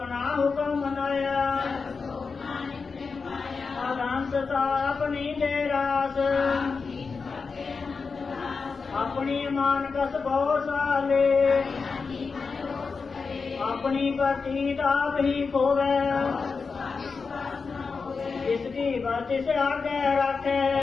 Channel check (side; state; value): right; quieter; 4.8 dB